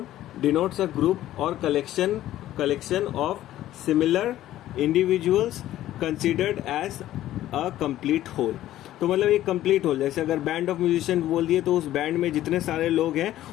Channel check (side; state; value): right; quieter; 13.7 dB